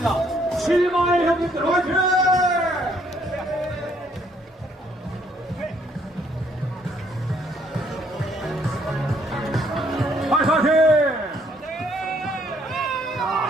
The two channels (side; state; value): both; normal; correlation 0.67